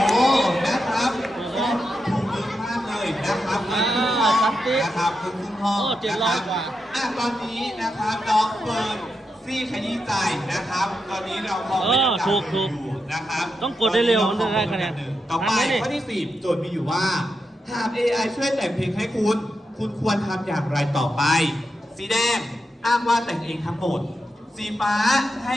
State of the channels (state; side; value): normal; both; correlation 0.86